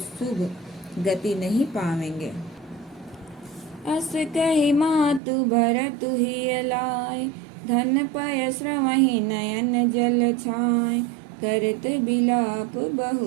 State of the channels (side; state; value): left; drops out; at 5.2 s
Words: गति नहीं पावेंगे। अस कही मातु भरतु ही लाए, धन पय श्रवहि नयन जल छाए, करत बिलाप